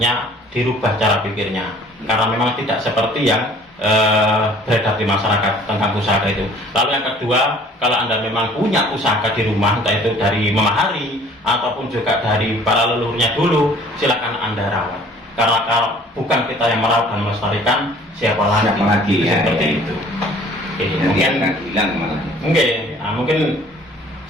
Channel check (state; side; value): normal; both; correlation 0.53